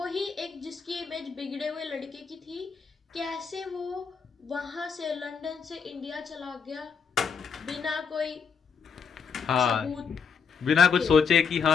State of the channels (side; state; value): right; quieter; 6.1 dB